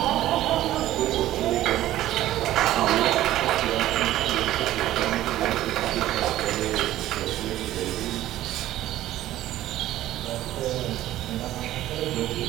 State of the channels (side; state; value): left; quieter; 14.2 dB